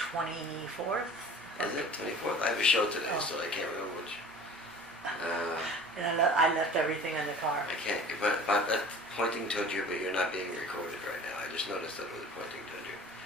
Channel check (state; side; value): normal; both; correlation 0.43